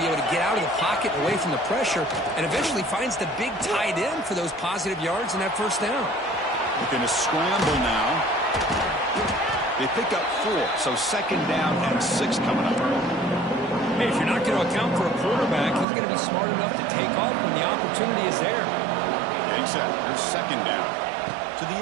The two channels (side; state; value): left; drops out; at 15.9 s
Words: able to get out of the pocket away from the pressure and eventually finds the big tight end for those positive yards in that first down. Looking to scramble now. They pick up 4, so 2nd down and 6 coming up. Hey, if you're not going to account for a quarterback, he's going to be smart enough to take off when the opportunity is there. Getting set. Here's 2nd down. To